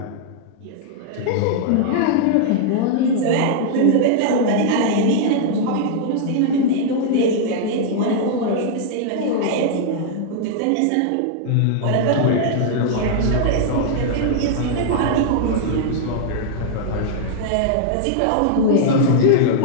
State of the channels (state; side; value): different; both; correlation -0.01